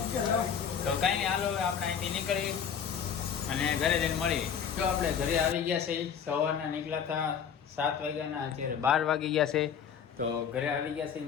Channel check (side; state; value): right; quieter; 7.7 dB